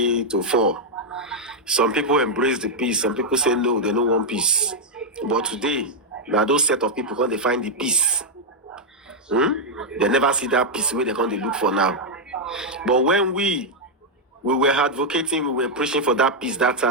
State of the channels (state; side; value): normal; both; correlation -0.01